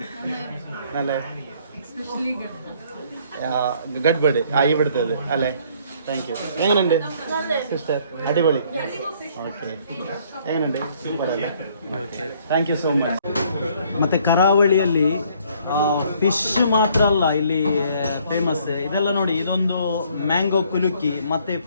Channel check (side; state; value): both; inverted; correlation -0.62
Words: അല്ലേ ഗഡ്ബഡ് ഇവിടുത്തേത് അല്ലേ? Thank you. എങ്ങനെയുണ്ട് സിസ്റ്റർ? അടിപൊളി. ഓക്കെ. എങ്ങനെയുണ്ട്? സൂപ്പർ അല്ലേ? Okay thank you so much. ಮತ್ತು ಕರಾವಳಿಯಲ್ಲಿ ಫಿಶ್ ಮಾತ್ರ ಅಲ್ಲ ಇಲ್ಲಿ ಫೇಮಸ್. ಇದೆಲ್ಲ ನೋಡಿ, ಇದೊಂದು ಮ್ಯಾಂಗೋ ಕುಲುಕಿ ಮತ್ತು